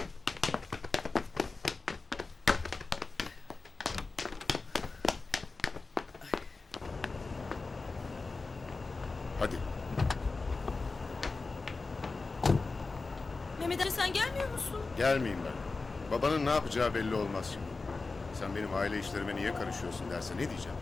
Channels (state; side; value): quieter; right; 3.9 dB